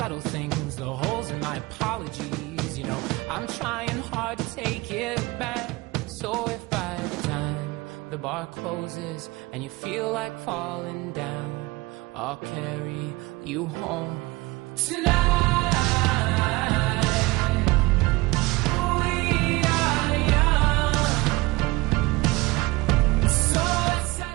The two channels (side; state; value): left; quieter; 22.1 dB